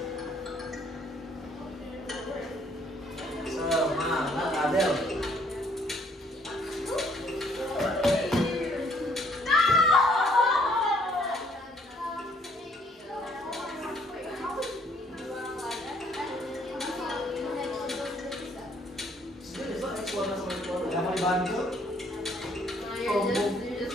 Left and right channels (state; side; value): normal; both; correlation 0.64